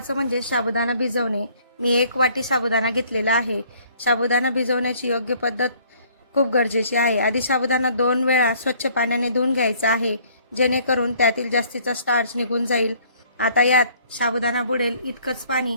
म्हणजे साबुदाणा भिजवणे. मी 1 वाटी साबुदाणा घेतलेला आहे. साबुदाणा भिजवण्याची योग्य पद्धत खूप गरजेची आहे. आधी साबुदाणा 2 वेळा स्वच्छ पाण्याने धुवून घ्यायचा आहे, जेणेकरून त्यातील जास्तीचा स्टार्च निघून जाईल. आता यात साबुदाणा बुडेल इतकंच पाणी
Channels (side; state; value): both; inverted; correlation -0.59